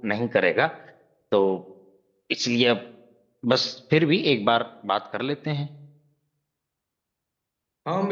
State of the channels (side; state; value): both; identical; correlation 1.00